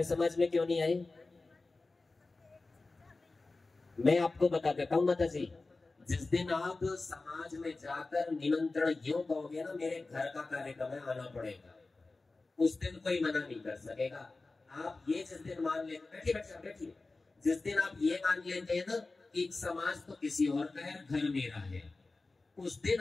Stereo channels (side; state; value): right; quieter; 3.5 dB